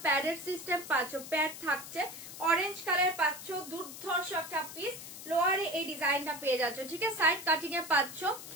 প্যাডের সিস্টেম পাচ্ছ, প্যাড থাকছে, অরেঞ্জ কালার পাচ্ছ, দুর্ধর্ষ একটা পিস। লোয়ারে এই ডিজাইনটা পেয়ে যাচ্ছ, ঠিক আছে, সাইড কাটিং এ পাচ্ছ,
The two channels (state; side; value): noise; left; hiss, 12 dB below the sound